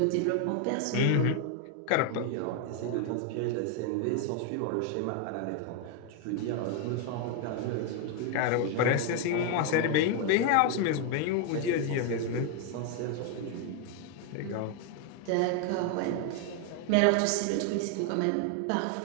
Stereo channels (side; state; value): both; different; correlation 0.01